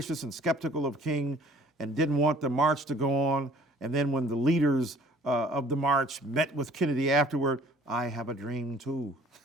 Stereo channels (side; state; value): both; normal; correlation 0.53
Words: and skeptical of King and didn't want the march to go on. And then when the leaders of the march met with Kennedy afterward, I have a dream too.